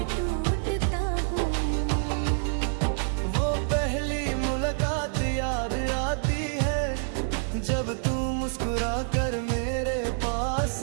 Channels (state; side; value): silent; left; 60 dB below the other